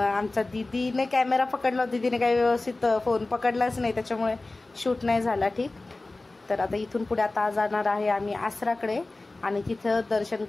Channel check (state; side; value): quieter; right; 3.1 dB